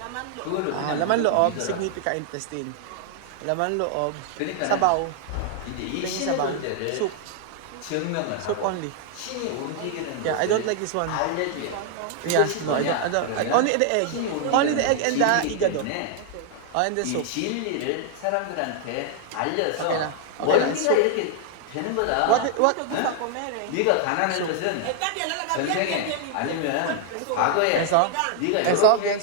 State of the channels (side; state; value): both; different; correlation 0.00